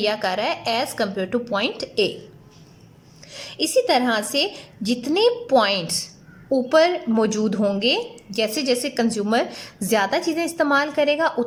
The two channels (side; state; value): both; identical; correlation 1.00